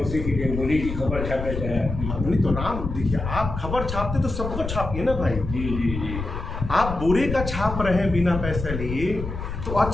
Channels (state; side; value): noise; left; rumble, 6 dB below the sound